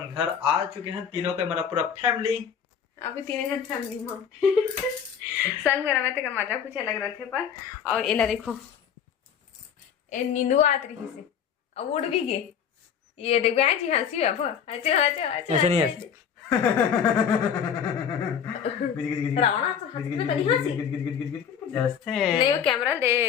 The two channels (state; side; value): quieter; right; 7.9 dB